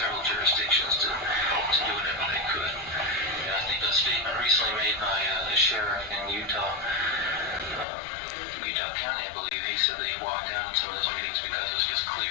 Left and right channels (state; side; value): drops out; right; at 7.9 s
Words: jurisdictions to do whatever they could. And I think a statement recently made by the sheriff in Utah County, I believe, he said that he walked out in some of those meetings because it was just